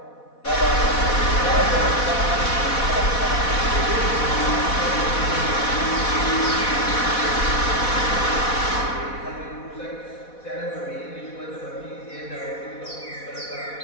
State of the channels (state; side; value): late; right; 4.1 ms